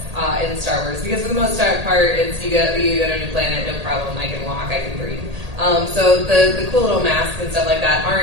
in Star Wars, because for the most part, it's you go to a new planet, no problem, I can walk, I can breathe. So the cool little masks and stuff like that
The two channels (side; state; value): left; late; 1.8 ms